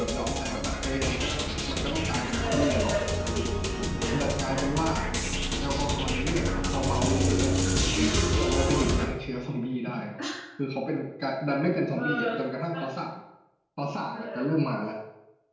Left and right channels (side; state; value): both; identical; correlation 1.00